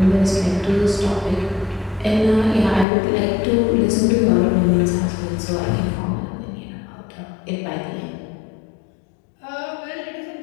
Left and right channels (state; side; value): drops out; right; at 2.9 s